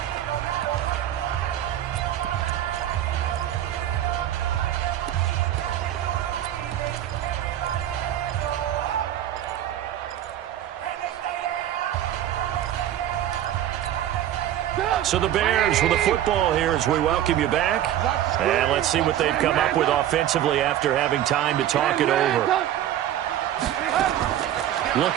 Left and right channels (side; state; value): left; quieter; 11.7 dB